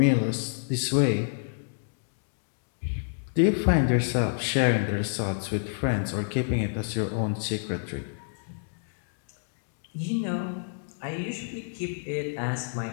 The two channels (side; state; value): right; silent; digital silence